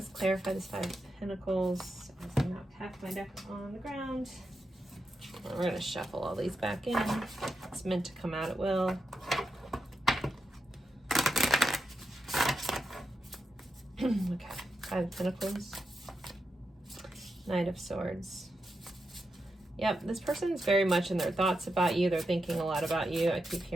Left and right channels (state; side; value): normal; both; correlation 0.86